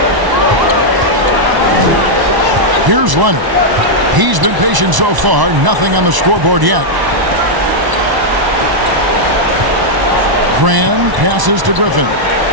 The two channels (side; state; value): left; late; 1.0 ms